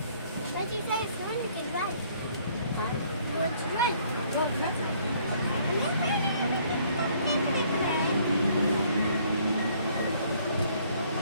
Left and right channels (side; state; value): both; inverted; correlation -0.62